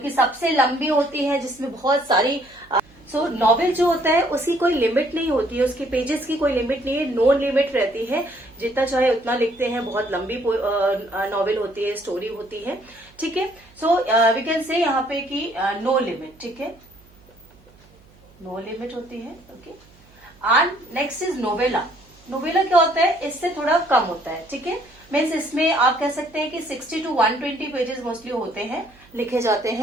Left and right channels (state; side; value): noise; right; hum, 28 dB below the sound